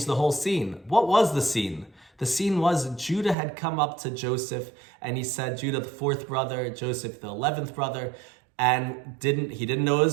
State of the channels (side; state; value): left; drops out; at 3.4 s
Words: the whole scene. What was the scene? The scene was Judah had come up to Joseph, and he said, Judah the fourth brother, Joseph the 11th brother, and he didn't know it